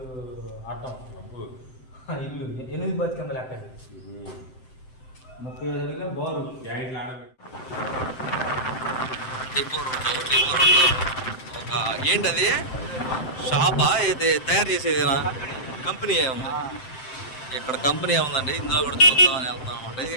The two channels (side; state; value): right; late; 7.7 ms